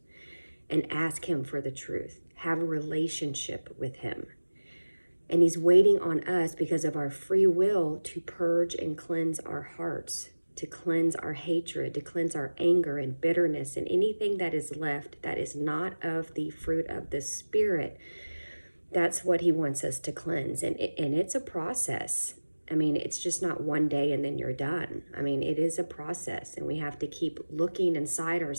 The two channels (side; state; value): both; inverted; correlation -1.00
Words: and ask him for the truth, have a relationship with him. And he's waiting on us because of our free will to purge and cleanse our hearts, to cleanse our hatred, to cleanse our anger and bitterness and anything that is left that is not of the fruit of the Spirit. That's what he wants us to cleanse. And it's a process. I mean, it's just not one day and then you're done. I mean, it is a process, and we have to keep looking inside